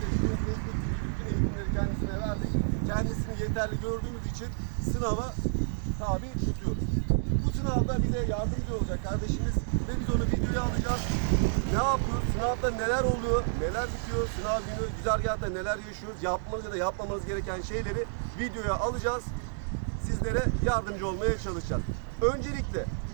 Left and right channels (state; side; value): silent; left; digital silence